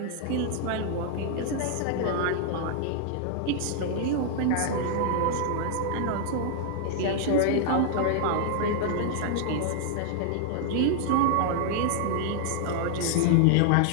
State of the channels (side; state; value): both; different; correlation 0.00